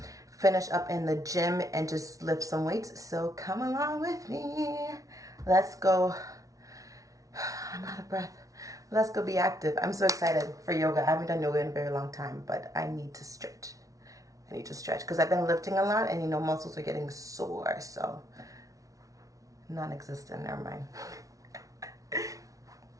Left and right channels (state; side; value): late; left; 0.17 ms